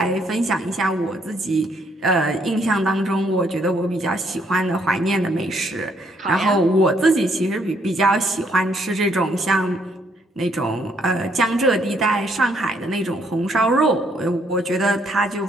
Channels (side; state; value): both; normal; correlation 0.69